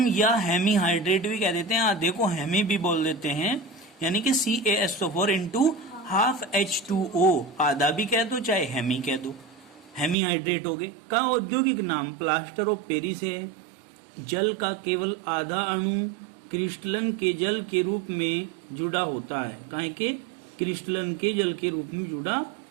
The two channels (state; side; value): drops out; left; at 10.2 s